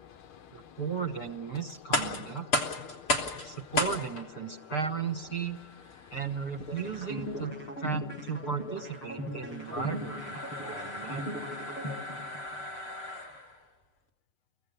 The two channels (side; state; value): right; late; 6.2 ms